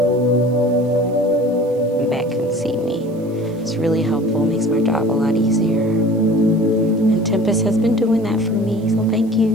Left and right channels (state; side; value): noise; right; hiss, 29 dB below the sound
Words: The back can see me. It's really helpful, makes my job a lot easier. And Tempest has been doing that for me, so thank